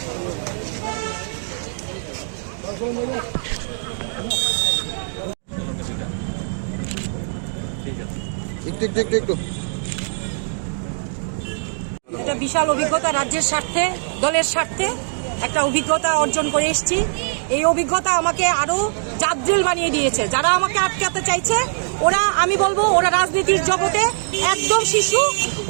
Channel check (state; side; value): silent; left; digital silence